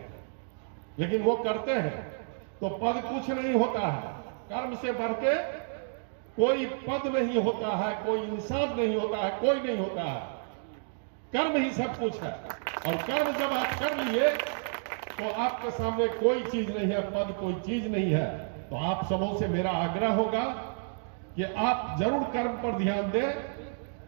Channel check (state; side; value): silent; left; digital silence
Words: लेकिन वो करते हैं तो पद कुछ नहीं होता है। कर्म से बढ़ के कोई पद नहीं होता है, कोई इंसान नहीं होता है, कोई नहीं होता है। कर्म ही सब कुछ है, और कर्म जब आप कर लिए तो आपके सामने कोई चीज नहीं है, पद कोई चीज नहीं है। तो आप सबों से मेरा आग्रह होगा कि आप जरूर कर्म पर ध्यान दें,